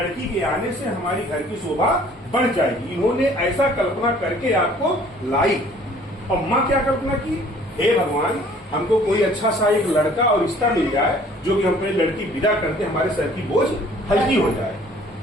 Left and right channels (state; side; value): normal; both; correlation 0.54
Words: के आने से हमारी घर की शोभा बढ़ जाएगी। इन्होंने ऐसा कल्पना करके आपको लाई। और माँ क्या कल्पना की, हे भगवान हमको कोई अच्छा सा एक लड़का और रिश्ता मिल जाए जो कि हम अपनी लड़की विदा करते हमारे सर की बोझ हल्की हो जाए।